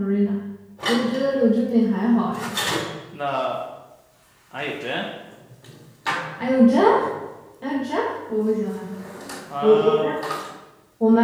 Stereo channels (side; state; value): both; identical; correlation 1.00